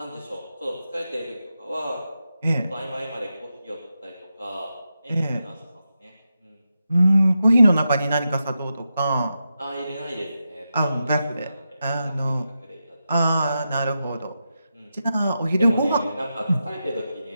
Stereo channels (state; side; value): inverted; both; correlation -0.88